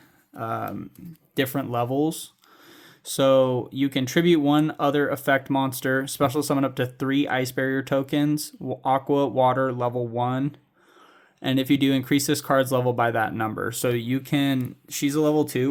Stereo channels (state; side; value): identical; both; correlation 1.00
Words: different levels. So you can tribute one other effect monster, special summon up to 3 Ice Barrier tokens, Aqua, Water, level 1. And if you do, increase this card's level by that number. So you can, she's a level